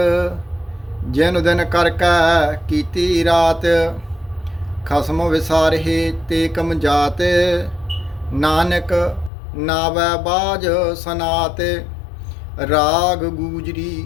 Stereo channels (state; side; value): drops out; right; at 9.3 s